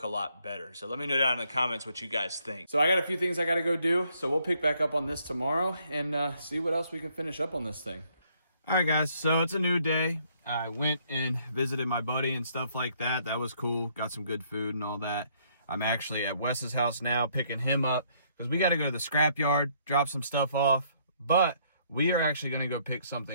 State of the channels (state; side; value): inverted; both; correlation -0.68